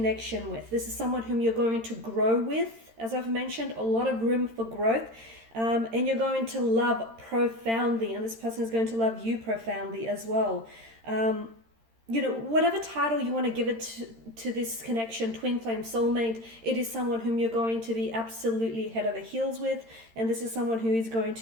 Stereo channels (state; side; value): late; left; 13 ms